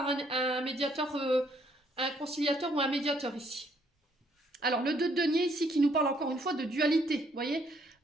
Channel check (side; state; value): both; normal; correlation 0.68